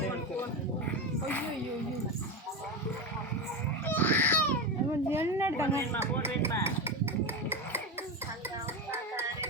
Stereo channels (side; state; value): both; normal; correlation 0.17